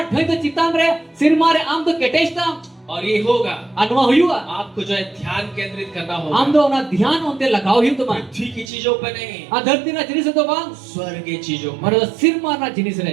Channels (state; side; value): drops out; left; at 8.7 s